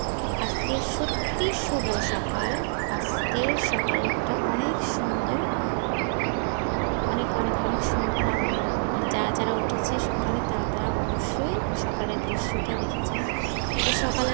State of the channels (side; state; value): left; silent; 60 dB below the other